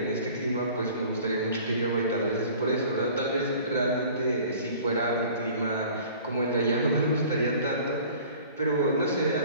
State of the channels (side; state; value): both; inverted; correlation -0.47